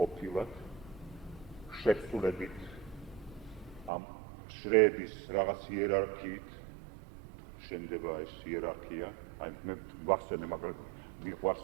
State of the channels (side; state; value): left; drops out; at 3.9 s